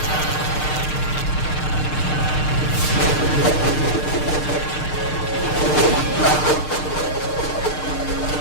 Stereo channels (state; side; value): late; right; 6.6 ms